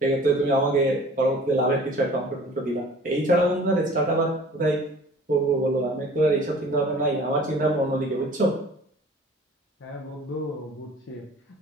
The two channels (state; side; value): normal; both; correlation 0.47